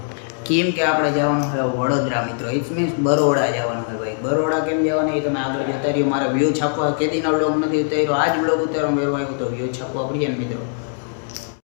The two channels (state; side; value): silent; right; 63 dB below the other